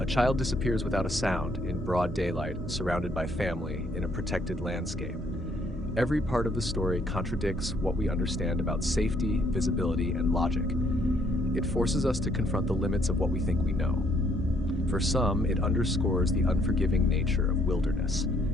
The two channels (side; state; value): both; normal; correlation 0.67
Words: child disappears without a sound, in broad daylight, surrounded by family, in a protected landscape. Every part of the story contradicts what we understand about safety, visibility, and logic. It forces us to confront the limits of what we think we know. For some, it underscores the unforgiving nature of wilderness.